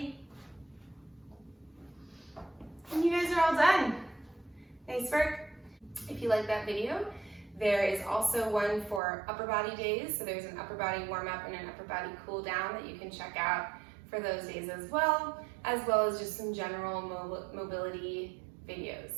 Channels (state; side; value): drops out; left; at 9.0 s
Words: And you guys are all done. Nice work. If you like that video, there is also one for upper body days. So there's an upper body warm up and an upper body cool down that you can check out for those days as well as just some general mobility